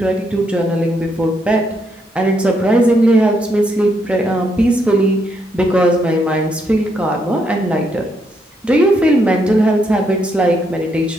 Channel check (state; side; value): normal; both; correlation 0.77